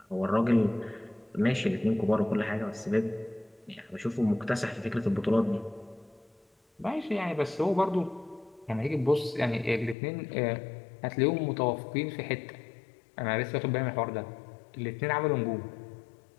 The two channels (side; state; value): right; drops out; at 10.0 s